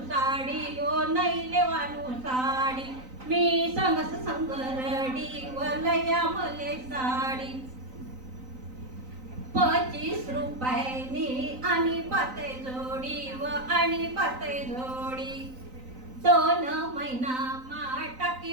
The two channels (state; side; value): late; left; 3.9 ms